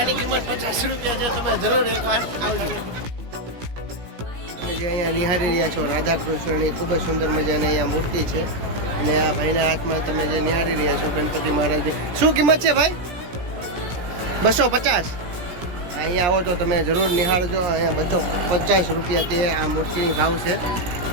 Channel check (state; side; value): late; left; 17 ms